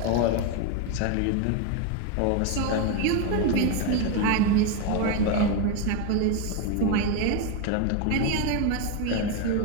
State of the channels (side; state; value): both; different; correlation 0.02